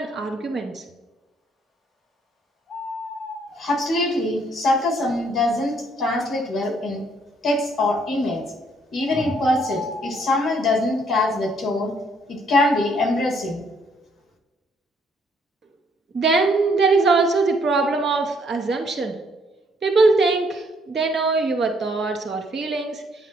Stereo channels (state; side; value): normal; both; correlation 0.67